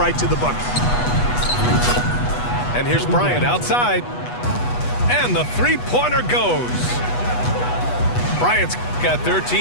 to the bucket. And here's Bryant outside. And the three-pointer goes. Bryant's got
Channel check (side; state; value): right; late; 8.2 ms